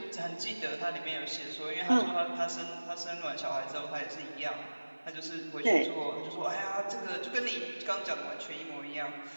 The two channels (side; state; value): both; inverted; correlation -1.00